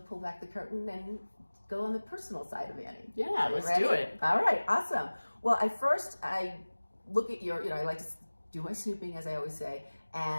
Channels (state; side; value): inverted; both; correlation -1.00